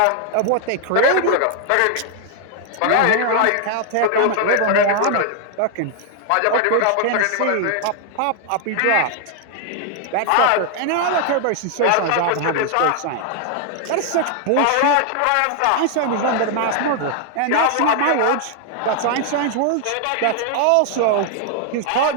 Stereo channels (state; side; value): different; both; correlation 0.00